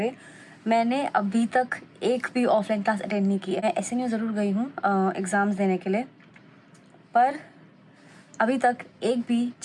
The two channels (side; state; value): both; identical; correlation 1.00